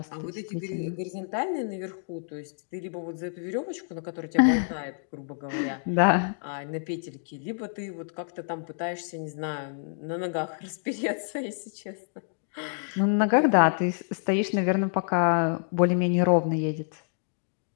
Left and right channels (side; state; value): right; silent; digital silence